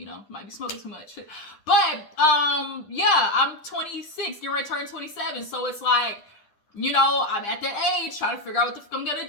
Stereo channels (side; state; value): right; late; 10 ms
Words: might be smoking too much. But, I'm 26, getting ready to turn 27. So it's like, I'm at that age trying to figure out what the fuck I'm going to